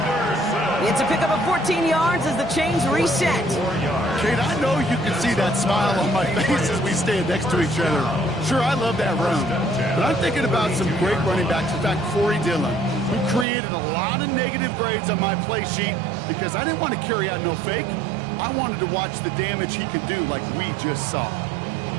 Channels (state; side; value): drops out; left; at 13.5 s